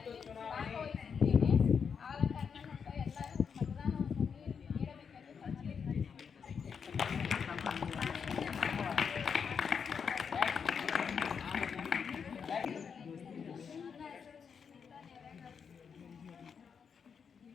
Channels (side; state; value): right; quieter; 6.5 dB